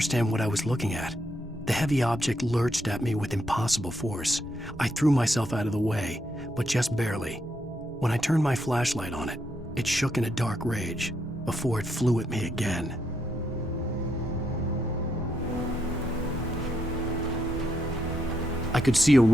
what I was looking at. The heavy object lurched at me with impossible force. I threw myself out of the way, but just barely. When I turned my flashlight on it, it shook in a dark rage before it flew at me again. I could see a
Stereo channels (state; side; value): normal; both; correlation 0.78